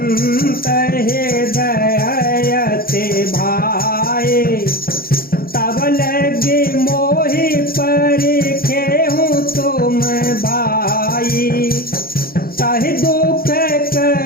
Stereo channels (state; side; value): late; right; 0.43 ms